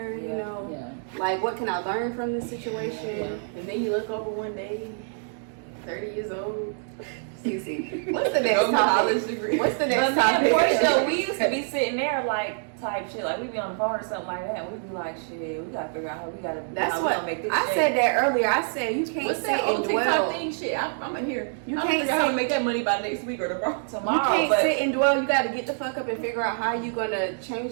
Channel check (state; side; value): silent; left; digital silence